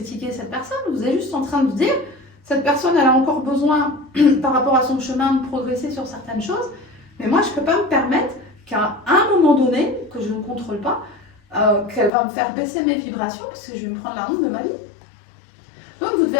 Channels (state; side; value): drops out; right; at 12.1 s